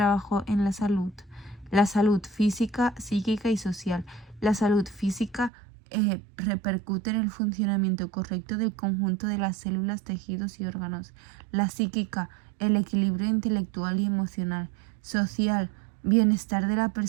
en la salud? La salud física, psíquica y social. La salud física repercute en el funcionamiento correcto del conjunto de las células, tejidos y órganos. La psíquica, el equilibrio intelectual y emocional. Social, bienestar de la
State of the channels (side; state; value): left; drops out; at 5.5 s